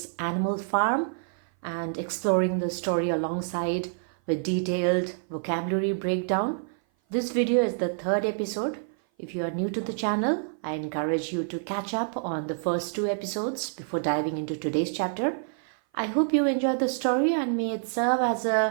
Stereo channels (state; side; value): silent; left; 56 dB below the other